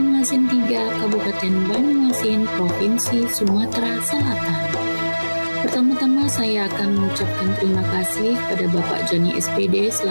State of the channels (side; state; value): both; inverted; correlation -1.00